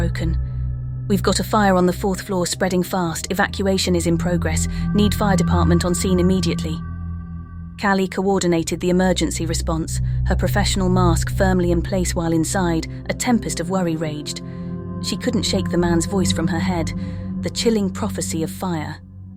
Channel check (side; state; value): both; identical; correlation 1.00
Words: We've got a fire on the 4th floor spreading fast. Evacuation is in progress. Need fire department on scene immediately. Callie coordinated the emergency response, her professional mask firmly in place while inside, a tempest of worry raged. She couldn't shake the man's voice from her head, the chilling prophecy of fire.